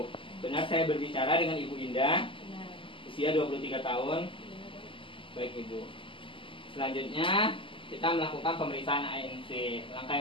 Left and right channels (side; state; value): right; late; 0.25 ms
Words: Benar saya berbicara dengan Ibu Indah? Benar. Usia 23 tahun. Baik Ibu. Selanjutnya kita melakukan pemeriksaan ANC. Langkah